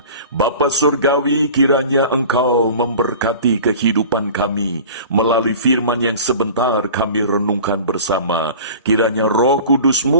Bapa Surgawi, kiranya Engkau memberkati kehidupan kami melalui firman yang sebentar kami renungkan bersama. Kiranya Roh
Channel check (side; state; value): both; inverted; correlation -0.40